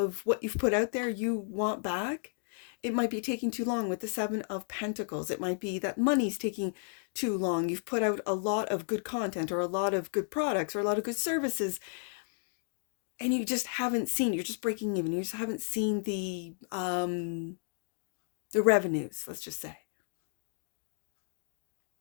what you've put out there you want back. It might be taking too long with the Seven of Pentacles. It might be that money's taking too long. You've put out a lot of good content or a lot of good products or a lot of good services, and you just haven't seen, you're just breaking even. You just haven't seen the revenues, let's just say.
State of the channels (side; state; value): right; silent; digital silence